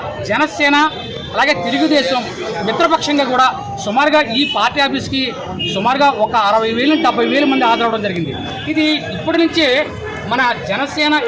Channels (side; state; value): both; identical; correlation 1.00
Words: జనసేన అలాగే తెలుగుదేశం మిత్రపక్షంగా కూడా సుమారుగా ఈ పార్టీ ఆఫీస్కి సుమారుగా ఒక 60,000 నుంచి 70,000 మంది హాజరవడం జరిగింది. ఇది ఇప్పటి నుంచే మన జనసేన